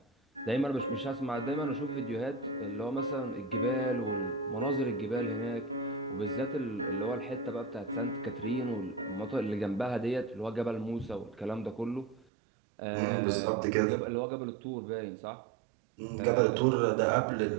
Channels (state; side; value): drops out; left; at 12.2 s